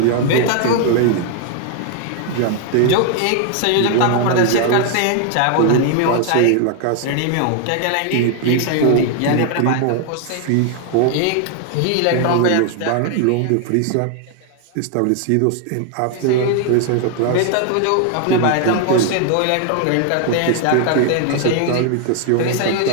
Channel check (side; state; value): both; different; correlation 0.00